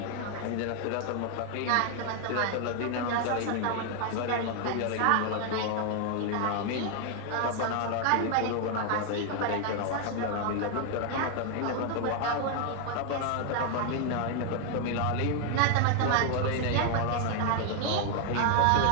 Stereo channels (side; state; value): both; different; correlation 0.00